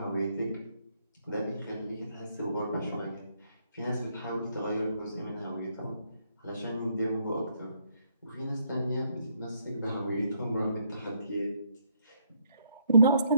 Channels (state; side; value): inverted; both; correlation -0.72